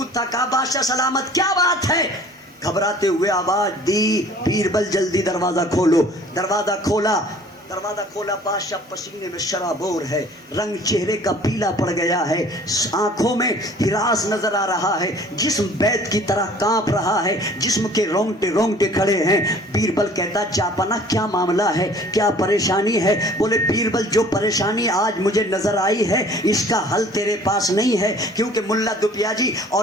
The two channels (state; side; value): normal; both; correlation 0.51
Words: تھا. کہا بادشاہ سلامت, کیا بات ہے؟ گھبراتے ہوئے آواز دی, بیربل جلدی دروازہ کھولو. دروازہ کھولا, دروازہ کھولا, بادشاہ پسینے میں شرابور ہے, رنگ چہرے کا پیلا پڑ گیا ہے, آنکھوں میں ہراس نظر آ رہا ہے, جسم بیت کی طرح کانپ رہا ہے, جسم کے رونگٹے رونگٹے کھڑے ہیں. بیربل کہتا جاپنا کیا معاملہ ہے, کیا پریشانی ہے؟ بولے بیربل جو پریشانی آج مجھے نظر آئی ہے اس کا حل تیرے پاس نہیں ہے, کیونکہ ملا دپیا جی